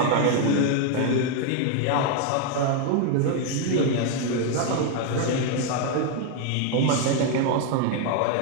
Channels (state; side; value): different; both; correlation 0.01